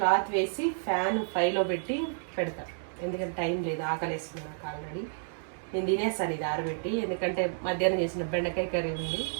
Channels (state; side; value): silent; left; 58 dB below the other